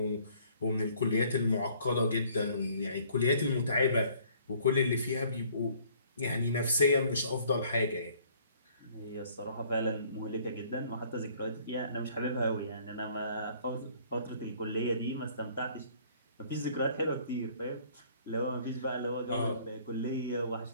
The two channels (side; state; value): both; inverted; correlation -0.58